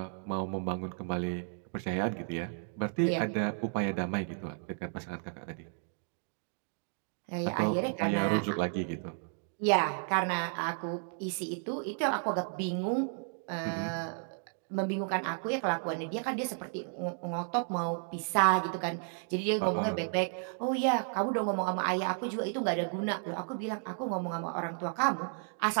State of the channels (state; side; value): silent; left; 56 dB below the other